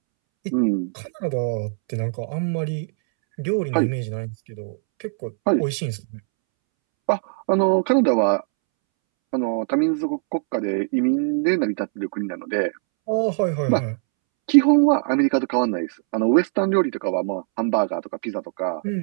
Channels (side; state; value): left; silent; 64 dB below the other